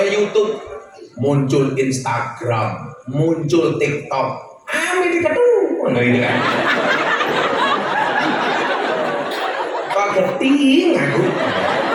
YouTube, muncul Instagram, muncul TikTok. Media tuh, ini kan. Kok geting aku?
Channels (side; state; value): both; identical; correlation 1.00